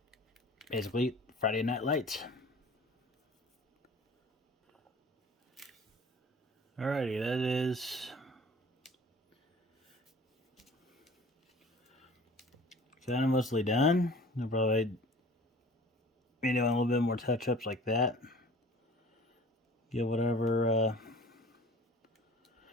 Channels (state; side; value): normal; both; correlation 0.46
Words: basically Friday Night Lights. Alrighty, that is kind of mostly done. I'll probably be doing a little bit more touch-ups like that. Get whatever